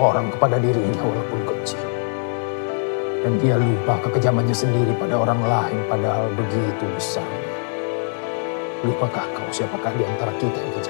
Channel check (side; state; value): right; silent; 58 dB below the other